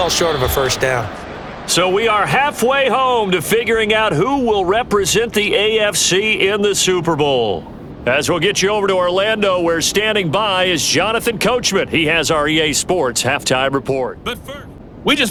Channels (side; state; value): both; identical; correlation 1.00